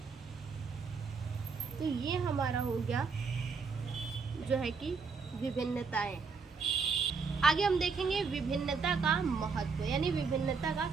तो ये हमारा हो गया जो है कि विभिन्नताएं। आगे हम देखेंगे विभिन्नता का महत्व, यानी विभिन्नता का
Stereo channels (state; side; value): quieter; left; 5.0 dB